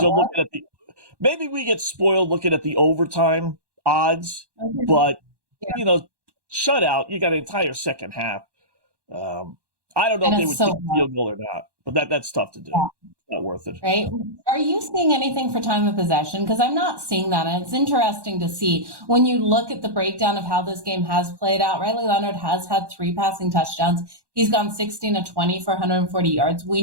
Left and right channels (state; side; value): late; left; 1.1 ms